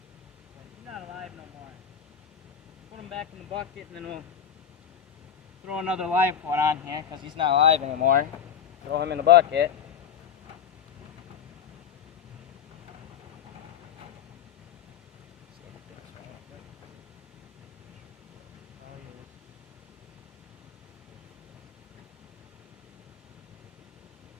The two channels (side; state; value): right; quieter; 8.2 dB